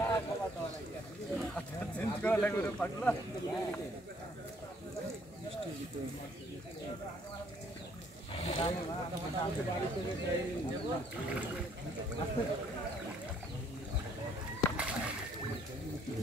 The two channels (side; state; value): both; normal; correlation 0.64